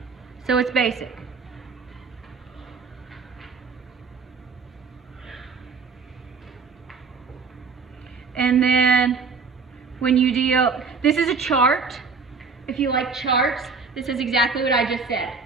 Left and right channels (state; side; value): quieter; left; 4.9 dB